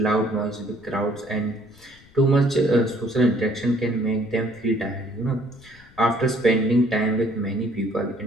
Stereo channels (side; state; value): left; noise; rumble, 26 dB below the sound